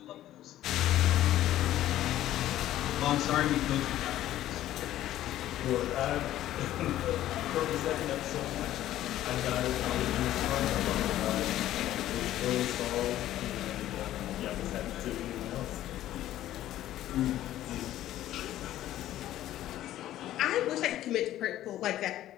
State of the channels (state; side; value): quieter; right; 13.4 dB